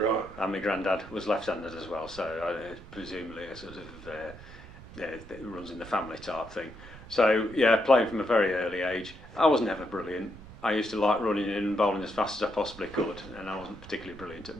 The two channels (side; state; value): right; noise; rumble, 17 dB below the sound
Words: And my granddad was left-handed as well, so presumably a sort of it runs in the family type thing. So yeah, playing from a very early age. I was never brilliant. I used to like running in and bowling as fast as I possibly could, and I wasn't particularly brilliant at